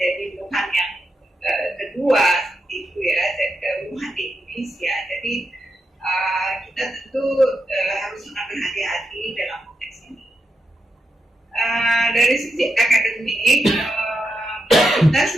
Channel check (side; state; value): both; normal; correlation 0.85